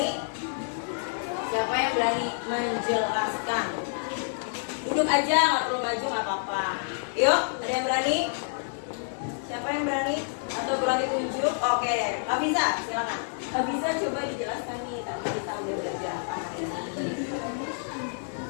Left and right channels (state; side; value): silent; right; digital silence